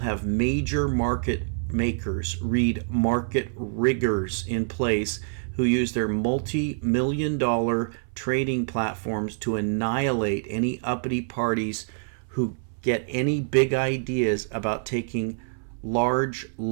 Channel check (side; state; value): left; silent; 61 dB below the other